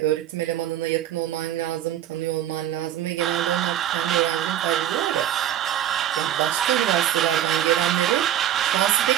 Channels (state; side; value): quieter; left; 11.3 dB